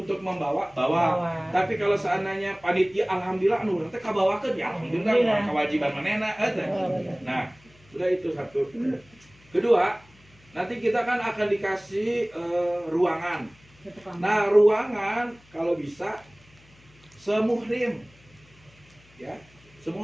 membawa, bawa. Tapi kalau seandainya panitia, alhamdulillah, nanti kabawakan ya, alhamdulillah, kewajiban manena. Nah, sudah itu satu. Kedua, nanti kita kan akan dikasih ruangan. Nah, ruangan kalau bisa semuhrim, ya,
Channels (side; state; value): left; noise; hum, 28 dB below the sound